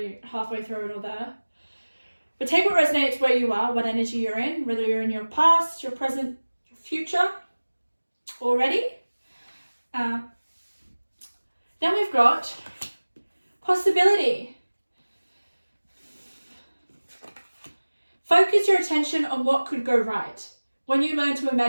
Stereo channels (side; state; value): both; inverted; correlation -1.00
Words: halfway through it all there. But take what resonates where you are, what energy you're in, whether you're in your past, your present, your future already. Then we've got possibility. Focus your attention on what could go right. When you learn to